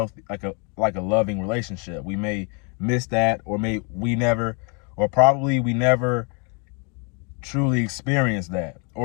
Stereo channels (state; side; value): quieter; right; 34.6 dB